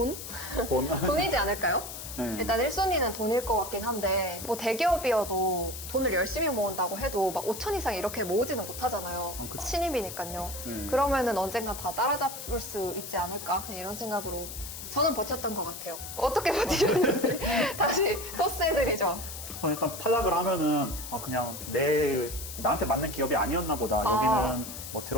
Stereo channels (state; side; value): noise; left; hiss, 9 dB below the sound